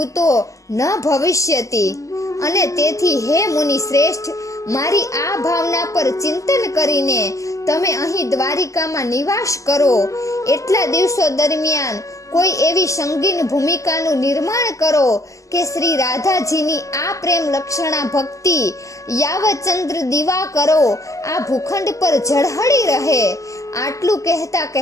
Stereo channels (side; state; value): right; late; 0.16 ms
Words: ન ભવિષ્યતી. અને તેથી હે મુનિ શ્રેષ્ઠ, મારી આ ભાવના પર ચિંતન કરીને તમે અહીં દ્વારિકામાં નિવાસ કરો. એટલા દિવસો દરમિયાન કોઈ એવી સંગીન ભૂમિકાનું નિર્માણ કરો કે શ્રી રાધાજીની આ પ્રેમ લક્ષણા ભક્તિ યાવચંદ્ર દીવા કરો આ ભૂખંડ પર ઝળહળી રહે. આટલું કહેતા